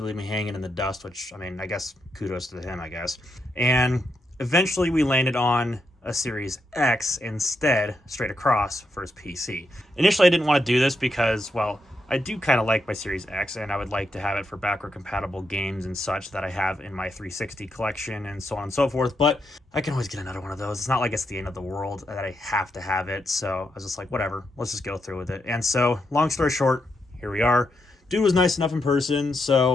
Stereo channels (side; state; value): both; normal; correlation 0.82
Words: leave me hanging in the dust, which, I mean, I guess kudos to him, I guess. And eventually we landed on a Series X instead, straight across for his PC. Initially, I didn't want to do this because, well, I do kind of like my Series X, and I would like to have it for backward-compatible games and such that I have in my 360 collection and so on and so forth, but I can always get another one of those. It's not like it's the end of the world that I have to have it, so I was just like, whatever, let's just go through with it. And so, long story short, here we are. Dude was nice enough in person,